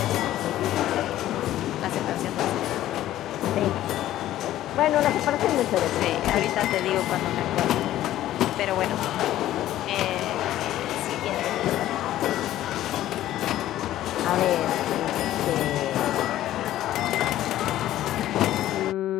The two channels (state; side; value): quieter; right; 13.6 dB